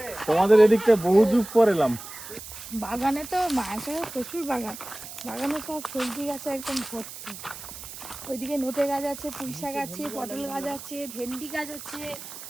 তোমাদের এদিকটা, বহু যুগ পর এলাম। বাগানে তো মাছের প্রচুর বাগান, বাগানে সব সবজি গাছে একদম ভর্তি। ওইদিকে নোটে গাছ আছে, পুঁই শাক আছে, পটল গাছ আছে, ভেন্ডি গাছ আছে।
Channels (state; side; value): noise; right; hiss, 12 dB below the sound